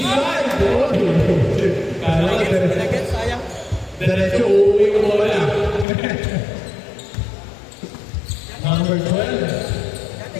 Kala ko, diretso uuwi ko mo na. Number 12.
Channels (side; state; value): right; drops out; at 5.9 s